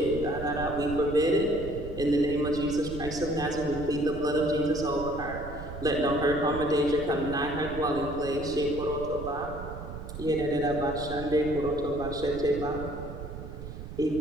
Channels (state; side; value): noise; right; rumble, 10 dB below the sound